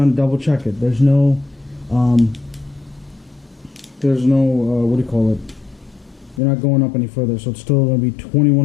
to double check it. There's no what do you call it? They're not going up any further, so it's still going to be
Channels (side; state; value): right; drops out; at 6.4 s